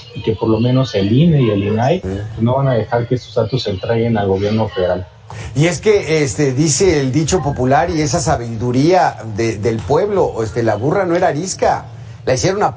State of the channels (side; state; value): both; identical; correlation 1.00